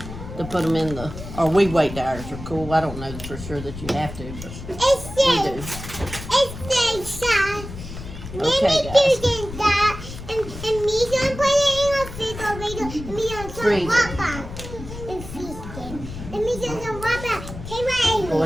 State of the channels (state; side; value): noise; left; rumble, 11 dB below the sound